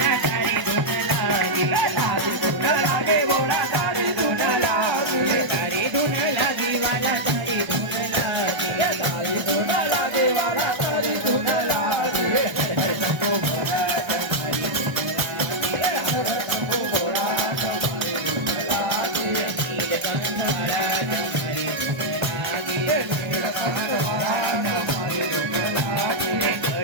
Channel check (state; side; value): late; left; 1.0 ms